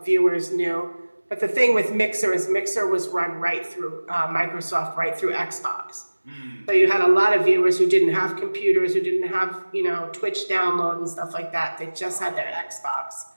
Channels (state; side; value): inverted; both; correlation -1.00